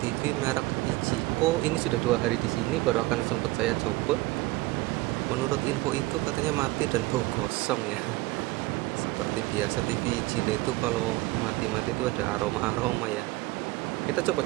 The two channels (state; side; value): quieter; left; 20.6 dB